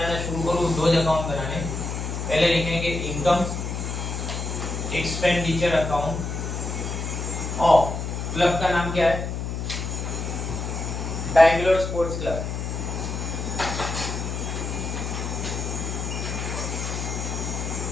शुरू करो, दो अकाउंट बनाने। पहले लिखेंगे income expenditure account of club का नाम क्या है, Bangalore sports club.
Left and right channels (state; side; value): noise; left; hum, 4 dB below the sound